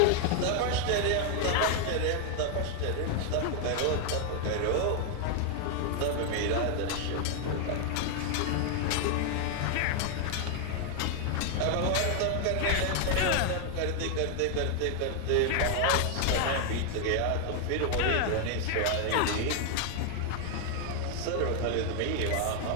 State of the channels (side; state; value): both; different; correlation 0.00